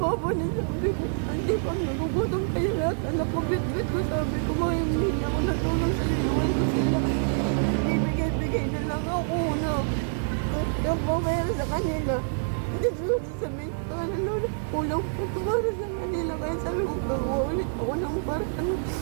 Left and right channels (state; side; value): silent; left; digital silence